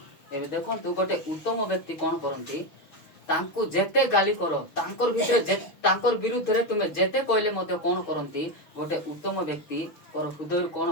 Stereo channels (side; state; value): right; late; 6.2 ms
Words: एबे देखंतु गोटे उत्तम व्यक्ति कोन करंती तांको जेते गाली करो तांकर भितरे तांकर विरुद्ध रे तुमे जेते कहले मते कोन करंती गोटे उत्तम व्यक्ति कर हृदय कोन